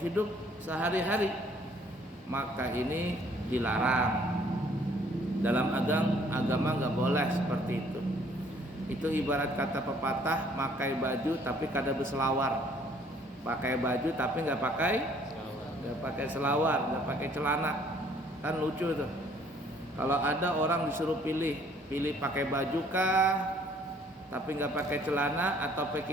hidup sehari-hari, maka ini dilarang. Dalam agama nggak boleh seperti itu. Itu ibarat kata pepatah, pakai baju tapi kada berselawar, pakai baju tapi nggak pakai selawar, nggak pakai celana, kan lucu tuh. Kalau ada orang disuruh pilih pakai baju kah tapi nggak pakai celana, atau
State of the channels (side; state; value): both; normal; correlation 0.60